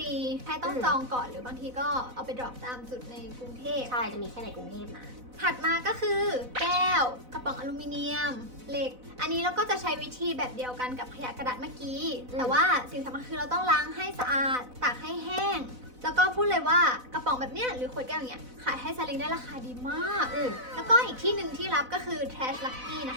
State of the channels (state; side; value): late; left; 4.0 ms